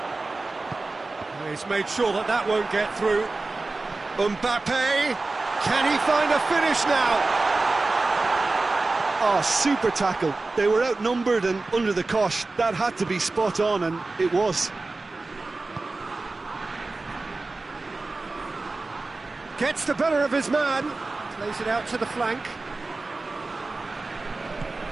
He's made sure that that won't get through. Mbappe, can he find a finish now? Oh, super tackle. They were outnumbered and under the cosh. That had to be spot on, and it was. Gets the better of his man. Plays it out to the flank.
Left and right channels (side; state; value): left; quieter; 3.4 dB